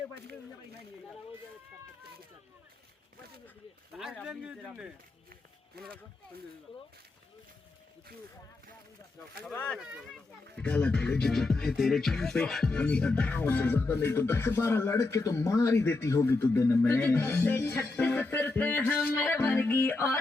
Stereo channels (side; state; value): right; quieter; 3.3 dB